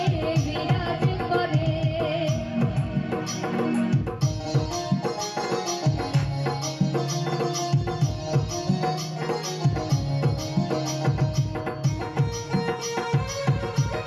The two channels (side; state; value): both; identical; correlation 1.00